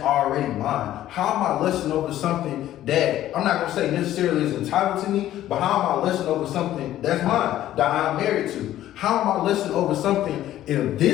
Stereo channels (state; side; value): quieter; right; 13.1 dB